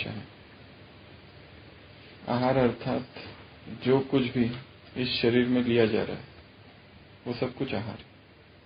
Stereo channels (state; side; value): identical; both; correlation 1.00